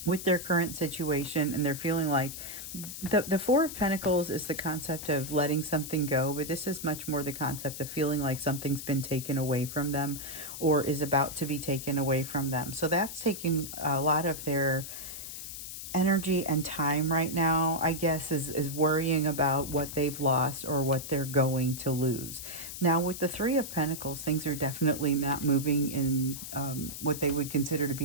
with their current situation, and they're feeling like the Four of Pentacles is the concept of letting something go, but this is much more the concept of feeling like something's been taken away from them or is about to be taken away from them. So that's taking a lot of their energy and time right now, I guess, is worrying about what they've lost or what they're going to lose. Now, with the Three of Pentacles, things are definitely not moving in what they would consider to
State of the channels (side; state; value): left; noise; hiss, 9 dB below the sound